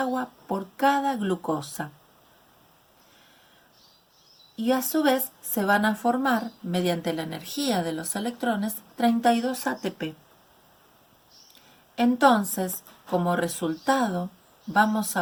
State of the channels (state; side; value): identical; both; correlation 1.00